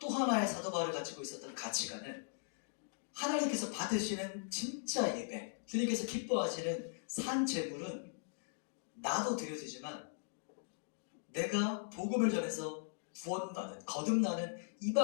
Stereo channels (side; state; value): right; silent; digital silence